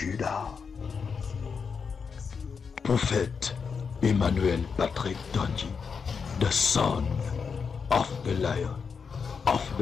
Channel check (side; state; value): right; quieter; 5.8 dB